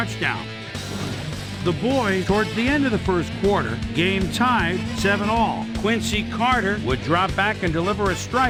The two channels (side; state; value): both; identical; correlation 1.00